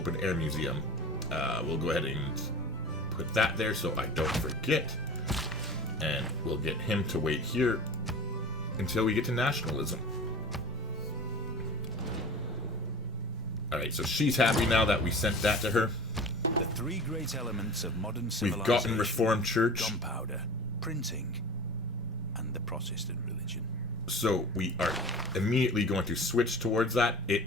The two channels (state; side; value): normal; both; correlation 0.37